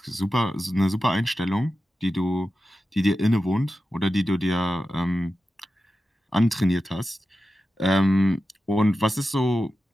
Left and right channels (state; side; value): normal; both; correlation 0.92